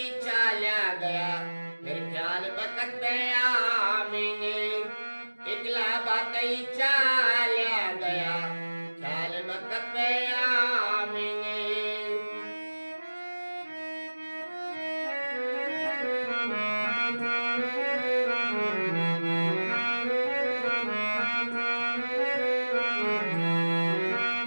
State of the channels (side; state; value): both; inverted; correlation -1.00